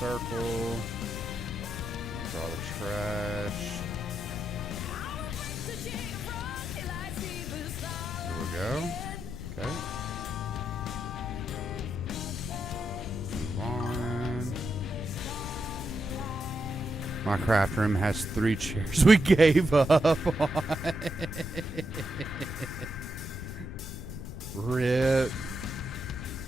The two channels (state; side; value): noise; left; rumble, 8 dB below the sound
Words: Draw the trash. There we go. Okay. Move on. My craft room has 3 chairs we gave up on. Rip.